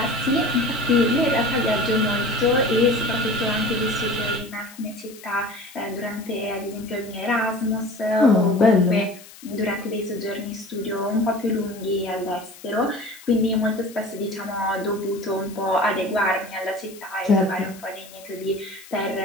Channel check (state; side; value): noise; left; hiss, 20 dB below the sound